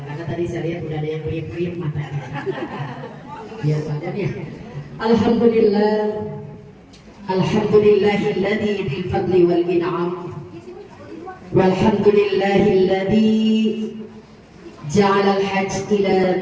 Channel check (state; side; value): identical; both; correlation 1.00